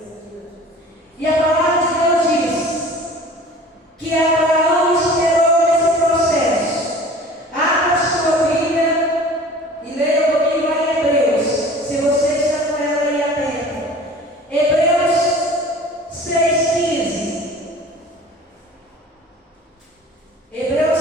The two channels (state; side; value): normal; both; correlation 0.44